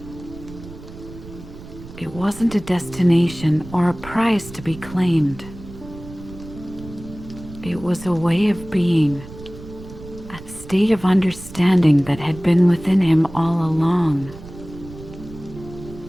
It wasn't a destination or a prize to be claimed. It was a way of being, a state of understanding that had been within him all along.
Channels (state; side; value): noise; right; rumble, 15 dB below the sound